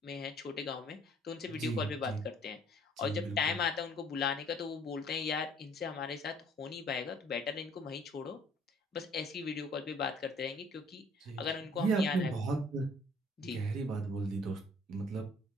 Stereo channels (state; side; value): normal; both; correlation 0.58